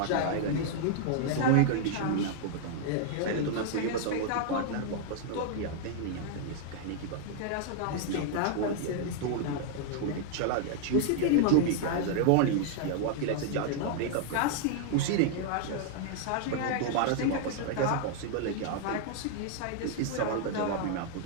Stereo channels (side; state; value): both; different; correlation -0.01